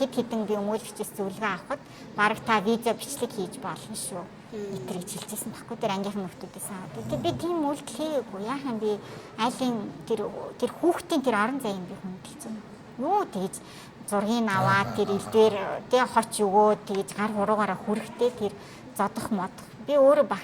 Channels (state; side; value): identical; both; correlation 1.00